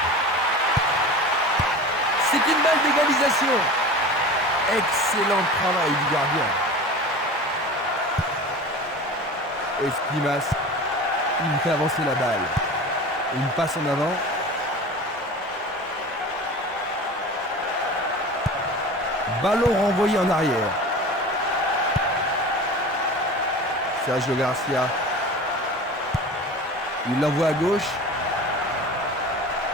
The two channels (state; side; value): normal; both; correlation 0.35